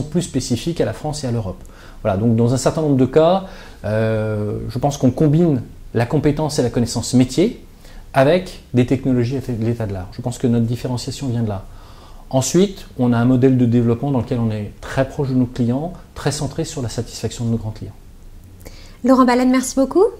plus spécifiques à la France et à l'Europe. Voilà, donc dans un certain nombre de cas, je pense qu'on combine la compétence et la connaissance métier avec des technologies à l'état de l'art. Je pense que notre différenciation vient de là. Ensuite, on a un modèle de développement dans lequel on est très proche de nos clients, très centré sur la satisfaction de nos grands clients. Laurent Baleine, merci beaucoup.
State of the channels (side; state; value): both; identical; correlation 1.00